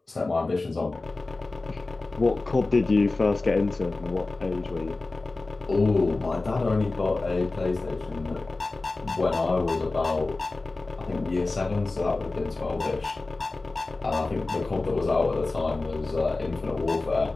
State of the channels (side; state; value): right; quieter; 3.3 dB